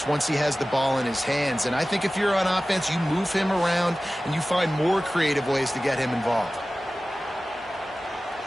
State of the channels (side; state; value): both; normal; correlation 0.96